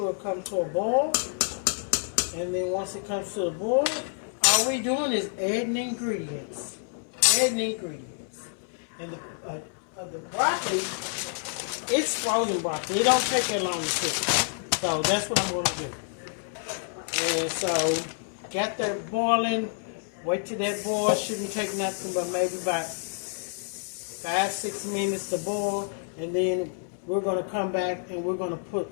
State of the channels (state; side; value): silent; right; 59 dB below the other